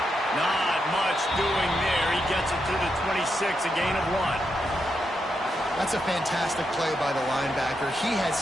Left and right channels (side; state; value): both; normal; correlation 0.83